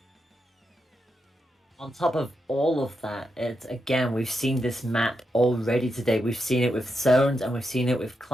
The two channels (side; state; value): both; normal; correlation 0.85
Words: On top of all of that, it's again, we've seen this map already today. We've seen it with Zones and we've seen it with